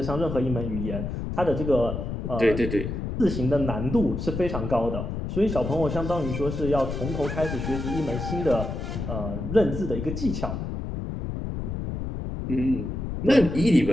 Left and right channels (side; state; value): left; noise; rumble, 4 dB below the sound